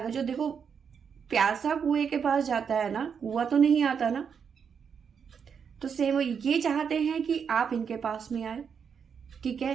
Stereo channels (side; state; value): left; quieter; 6.8 dB